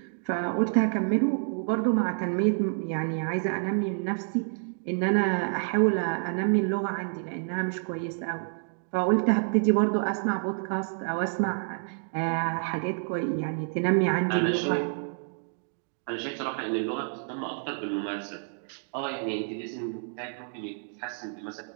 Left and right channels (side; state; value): left; silent; digital silence